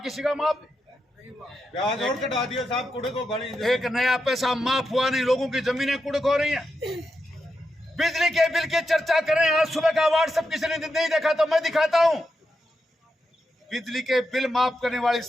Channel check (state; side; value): normal; both; correlation 0.86